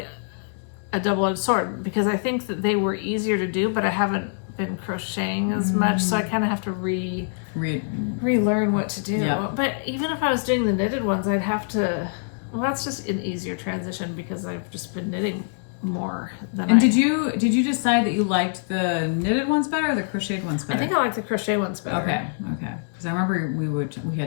a double-edged sword because I think that they were easier to do, but I haven't been crocheting as much, so I kind of have to relearn what to do. Yep. But even if I was doing the knitted ones, I'd have to. Well, that's just an easier transition because I've just been knitting more than And did you decide that you liked the knitted ones better or the crocheted ones better? I think I like the crochet ones better. Okay. Because I remember we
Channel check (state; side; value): silent; right; 62 dB below the other